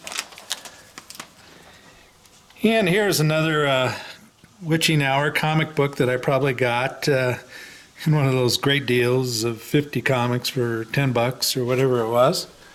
And here's another Witching Hour comic book that I probably got in one of those great deals of 50 comics for 10 bucks or whatever it was.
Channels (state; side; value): identical; both; correlation 1.00